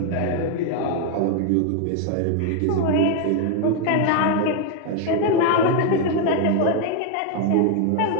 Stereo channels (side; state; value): both; different; correlation 0.00